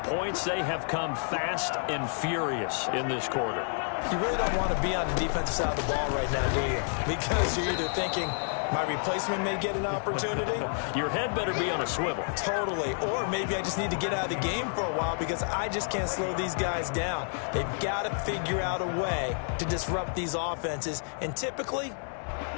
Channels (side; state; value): right; silent; 58 dB below the other